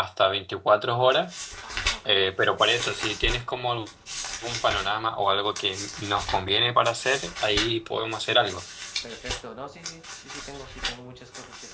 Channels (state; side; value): identical; both; correlation 1.00